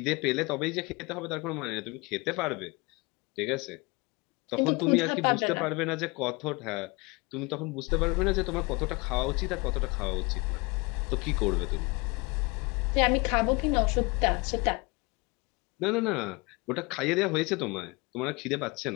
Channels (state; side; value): quieter; right; 26.5 dB